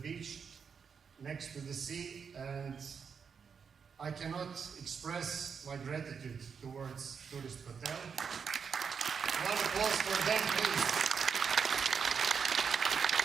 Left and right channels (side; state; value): left; quieter; 6.4 dB